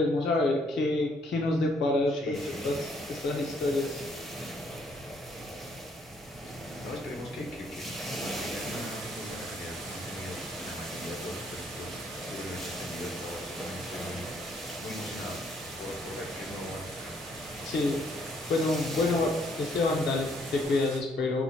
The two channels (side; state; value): both; normal; correlation 0.68